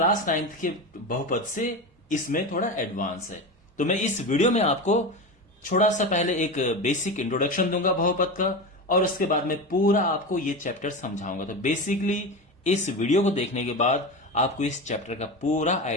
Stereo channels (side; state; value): both; normal; correlation 0.23